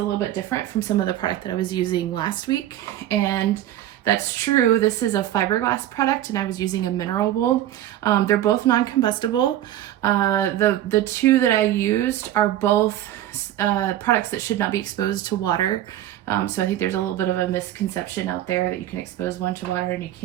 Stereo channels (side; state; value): left; quieter; 12.9 dB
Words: little bit different from some of the product that I was using last week, and that's true. This is a fiberglass product, and I was using a mineral wool. They're both non-combustible. The two that I used are both products that should not be exposed to water. So I think there's a little bit of a misconception out there that you can expose one to water and you